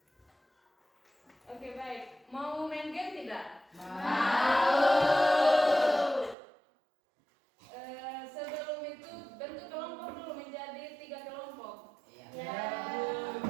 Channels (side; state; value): left; drops out; at 6.4 s